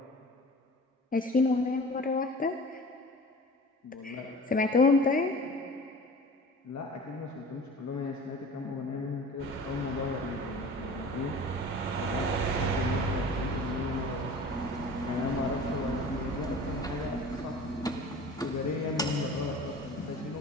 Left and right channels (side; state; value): both; normal; correlation 0.41